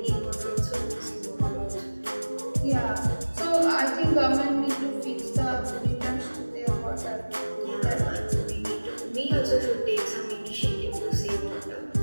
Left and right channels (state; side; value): inverted; both; correlation -1.00